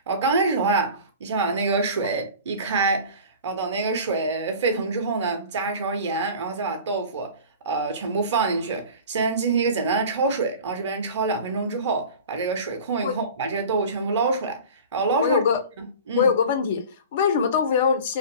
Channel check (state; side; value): inverted; both; correlation -0.38